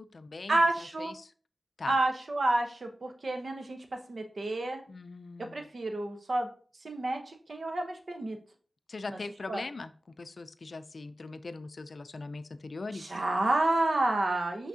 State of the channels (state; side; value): normal; both; correlation 0.94